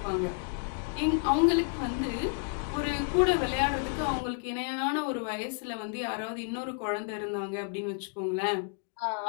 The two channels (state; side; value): quieter; right; 38.0 dB